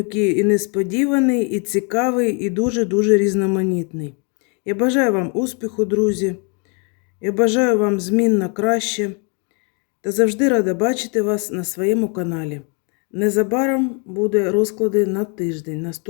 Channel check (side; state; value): right; quieter; 35.9 dB